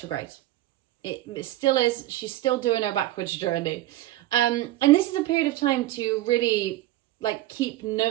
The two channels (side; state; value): left; quieter; 15.6 dB